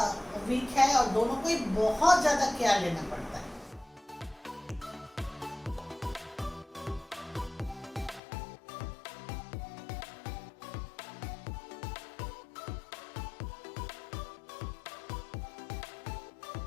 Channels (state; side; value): drops out; right; at 8.2 s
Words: वीक है और दोनों को ही बहुत ज़्यादा केयर लेना पड़ता है।